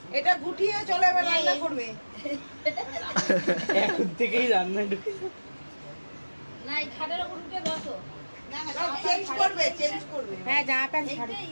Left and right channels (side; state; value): both; inverted; correlation -1.00